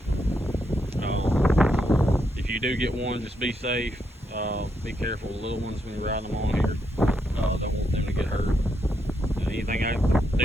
If you do get one, just be safe. Be careful with little ones when you're riding them on here. Don't want them to get hurt. Anything I can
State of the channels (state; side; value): normal; both; correlation 0.80